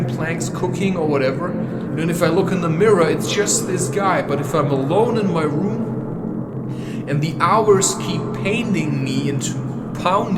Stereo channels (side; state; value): both; identical; correlation 1.00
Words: planks, cooking or whatever. And if I look in the mirror, it's just this guy. But if I'm alone in my room and the hours keep pounding me into